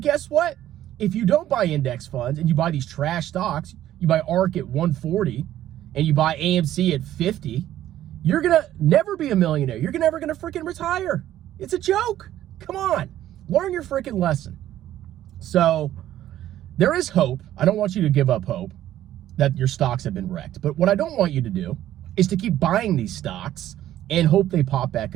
guess what? If you don't buy index funds and you buy these trash stocks, you buy ARK at 140 and you buy AMC at 50, you're going to never be a millionaire. You're never going to freaking retire. It's a joke. Come on. Learn your freaking lesson. So there is hope. I don't want you to give up hope that your stocks have been wrecked. But what I don't want you to do is to keep buying these stocks and hope they pop back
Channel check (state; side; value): quieter; left; 12.7 dB